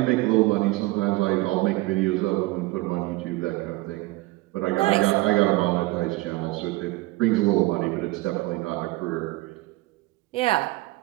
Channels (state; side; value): quieter; left; 20.3 dB